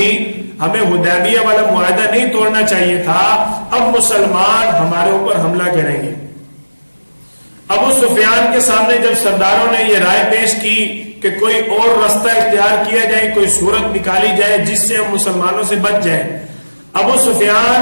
ہمیں حدیبیہ والا معاہدہ نہیں توڑنا چاہیے تھا، اب مسلمان ہمارے اوپر حملہ کریں گے۔ ابو سفیان کے سامنے جب سرداروں نے یہ رائے پیش کی کہ کوئی اور راستہ اختیار کیا جائے، کوئی صورت نکالی جائے جس سے ہم مسلمانوں سے بچ جائیں، ابو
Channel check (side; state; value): both; inverted; correlation -1.00